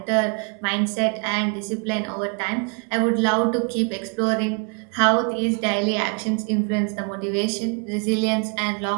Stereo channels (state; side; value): quieter; left; 36.4 dB